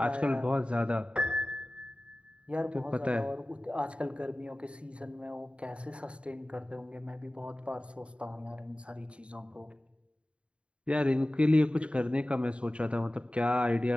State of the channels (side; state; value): left; late; 0.059 ms